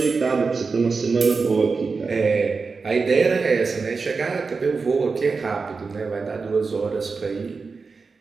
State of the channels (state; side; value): quieter; left; 4.6 dB